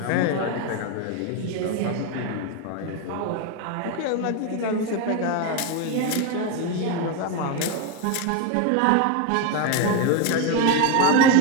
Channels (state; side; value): different; both; correlation 0.02